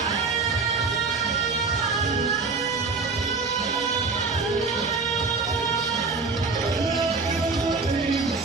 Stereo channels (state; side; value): quieter; left; 4.3 dB